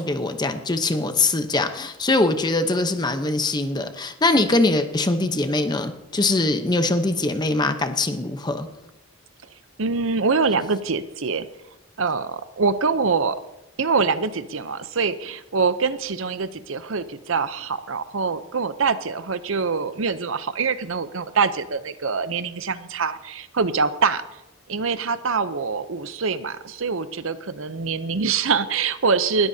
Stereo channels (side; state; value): both; normal; correlation 0.06